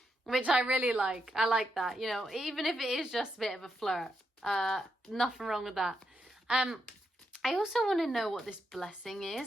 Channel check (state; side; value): normal; both; correlation 0.82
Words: which I really like. I like that, you know, even if it is just a bit of a flirt. Nothing wrong with that. I also want to know what this blessing